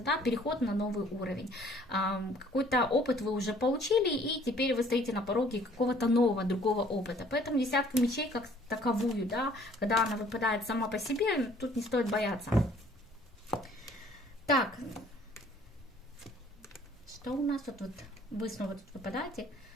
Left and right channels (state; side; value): normal; both; correlation 0.57